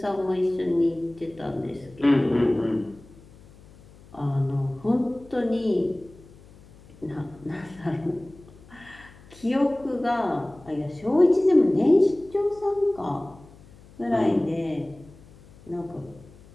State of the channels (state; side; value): noise; left; hum, 23 dB below the sound